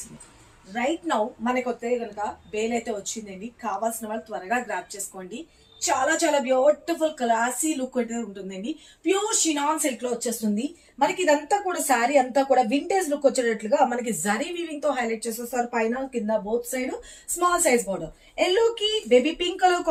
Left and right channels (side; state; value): both; identical; correlation 1.00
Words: రైట్ నౌ మనకి వస్తే కనుక బేల్ అయితే వచ్చిందండి. కావాల్సిన వాళ్ళు త్వరగా గ్రాప్ చేసుకోండి. చాలా చాలా బ్యూటిఫుల్ క్లాసీ లుక్ అయితే ఉంటుందండి. ప్యూర్ షినాన్ సిల్క్ లో వచ్చేస్తుంది. మనకి ఇదంతా కూడా శారీ అంతా కూడా వింటేజ్ లుక్ వచ్చేటట్లుగా మనకి జరీ వీవింగ్ తో హైలైట్ చేసేస్తారు. పైన కింద both side small size border, yellow కి బేబీ పింక్ కలర్